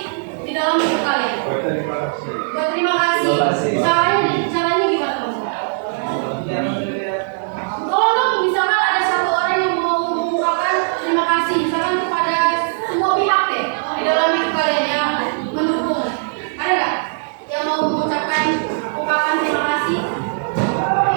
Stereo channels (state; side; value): silent; left; digital silence